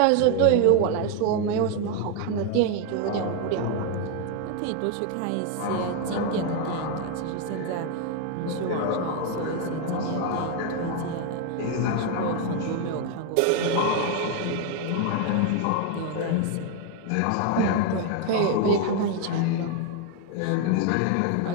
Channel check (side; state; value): both; different; correlation 0.01